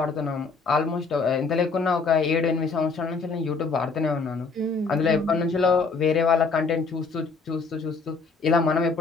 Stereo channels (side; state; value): right; quieter; 4.4 dB